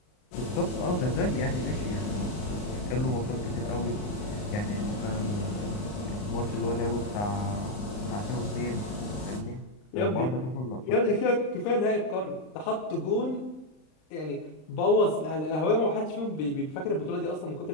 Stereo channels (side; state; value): right; late; 39 ms